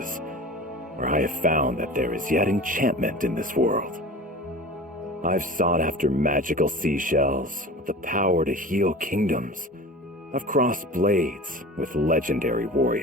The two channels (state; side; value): normal; both; correlation 0.36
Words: where I have found that there is yet enchantment in this world. I've sought after magical seashells with the power to heal kingdoms. I've crossed blades with legendary